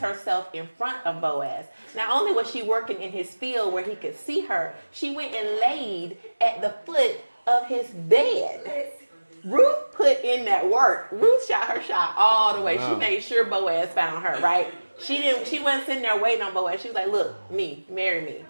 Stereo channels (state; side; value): inverted; both; correlation -1.00